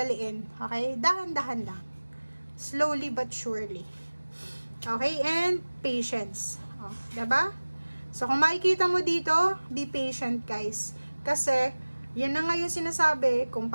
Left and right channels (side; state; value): both; inverted; correlation -1.00